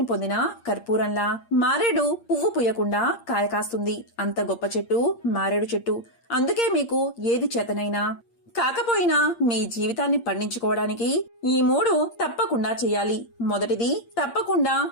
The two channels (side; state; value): right; late; 8.6 ms